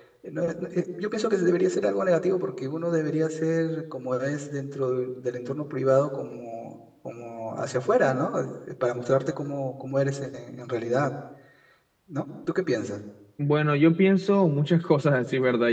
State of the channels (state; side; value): identical; both; correlation 1.00